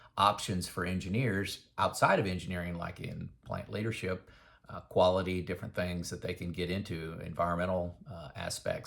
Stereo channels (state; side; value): identical; both; correlation 1.00